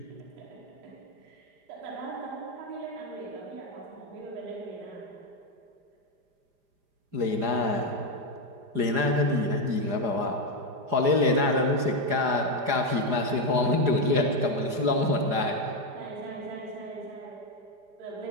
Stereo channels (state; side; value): late; left; 4.9 ms